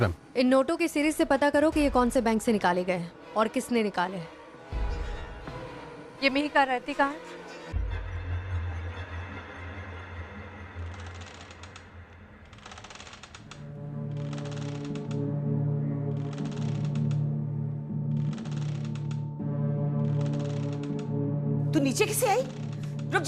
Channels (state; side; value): identical; both; correlation 1.00